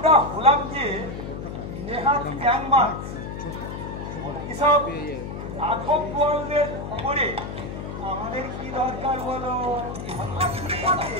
হলাম যে নেহাত গ্যাংমা এসব আধব বলদের খবরে আমাদের কি দরকার বলো?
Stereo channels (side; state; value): left; noise; hum, 7 dB below the sound